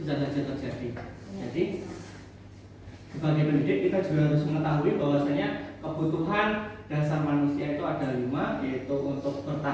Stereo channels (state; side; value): identical; both; correlation 1.00